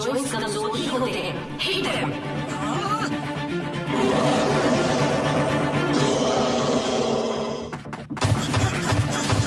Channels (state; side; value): identical; both; correlation 1.00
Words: कमजोर ही होते हैं। Hit him.